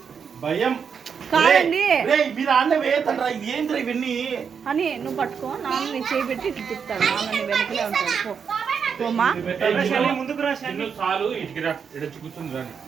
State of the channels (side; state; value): left; quieter; 6.6 dB